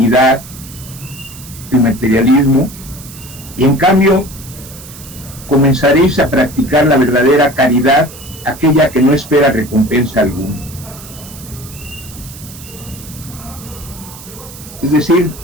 el materialismo, y en cambio comenzaréis a practicar la verdadera caridad, aquella que no espera recompensa alguna. Es decir,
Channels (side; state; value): right; noise; hiss, 16 dB below the sound